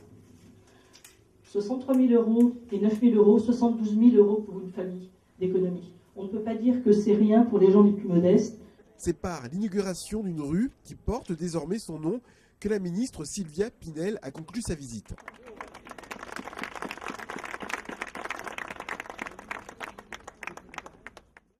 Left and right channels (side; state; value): both; identical; correlation 1.00